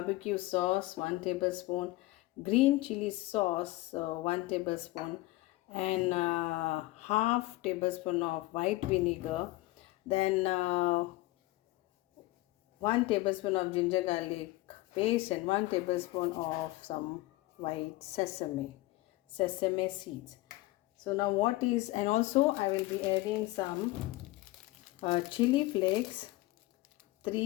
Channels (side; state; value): right; quieter; 19.3 dB